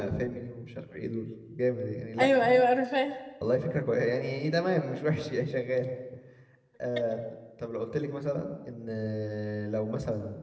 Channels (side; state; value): both; identical; correlation 1.00